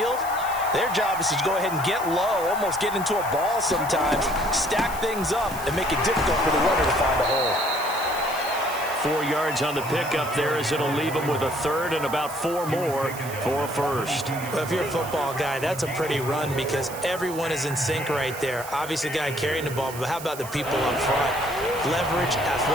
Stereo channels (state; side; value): noise; right; hiss, 13 dB below the sound